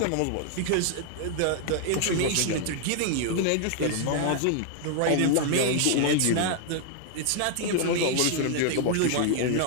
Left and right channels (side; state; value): both; different; correlation 0.00